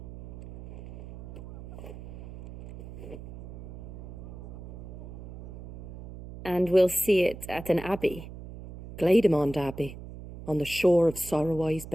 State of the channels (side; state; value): right; noise; hum, 13 dB below the sound